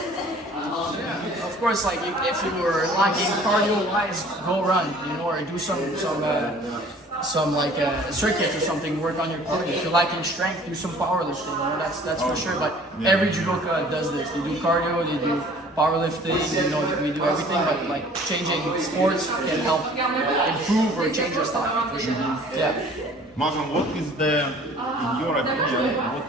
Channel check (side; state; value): both; normal; correlation 0.51